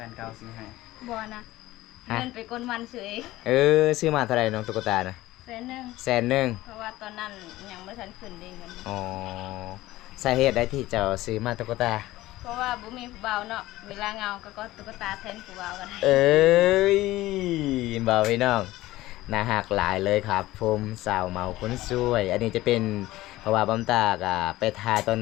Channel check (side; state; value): right; quieter; 17.0 dB